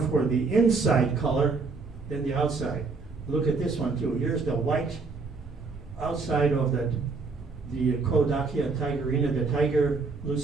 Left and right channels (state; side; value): quieter; left; 4.3 dB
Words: for the inside color than the outside. Look at this one too. Here's the white outside of the Koedoot tigerina, the tiger